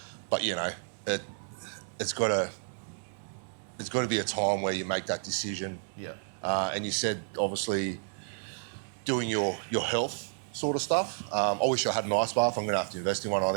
But, it's got to be a time where you make that decision. And you said, obviously, doing your health sort of stuff. I wish I had an ice bath. I'm going to have to invest in one, I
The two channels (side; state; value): left; silent; digital silence